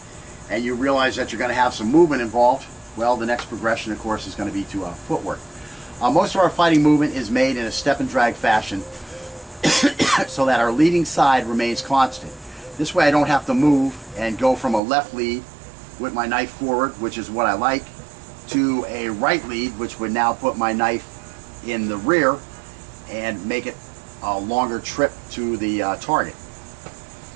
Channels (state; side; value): drops out; left; at 14.8 s